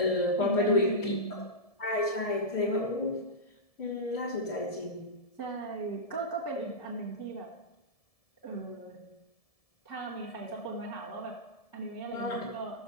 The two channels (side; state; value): right; late; 1.7 ms